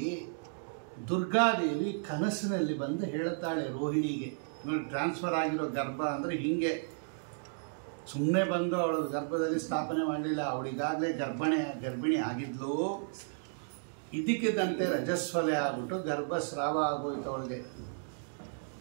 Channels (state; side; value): silent; left; digital silence